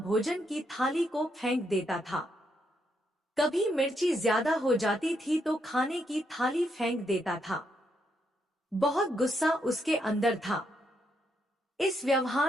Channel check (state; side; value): normal; both; correlation 0.78